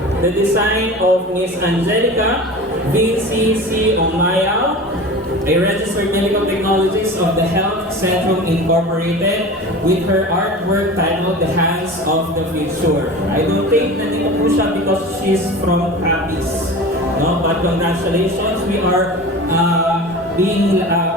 the design of Miss Angelica VCC Omaya, a registered medical technologist of the Health Centrum Incorporated, with her artwork titled The Hands of the Future. I don't think nandito po siya because she's from Capiz. No? But congratulations, we are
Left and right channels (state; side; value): normal; both; correlation 0.35